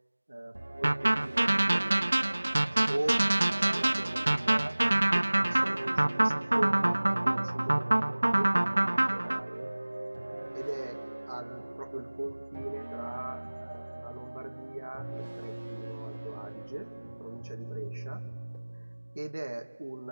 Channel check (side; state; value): both; inverted; correlation -1.00